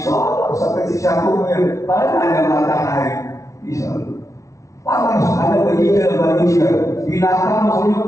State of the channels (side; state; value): right; late; 0.15 ms